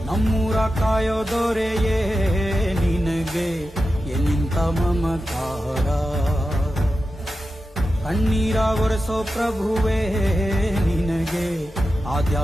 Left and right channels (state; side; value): normal; both; correlation 0.91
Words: ನಮ್ಮೂರ ಕಾಯೋ ದೊರೆಯೇ ನಿನಗೆ ಎಲ್ಲಿಂತ ಮಮಕಾರ, ಕಣ್ಣೀರ ಒರೆಸೋ ಪ್ರಭುವೇ ನಿನಗೆ